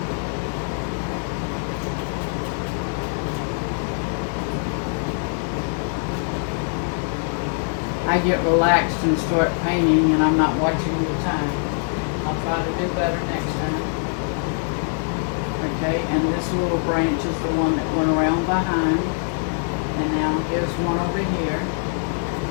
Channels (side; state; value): right; silent; 58 dB below the other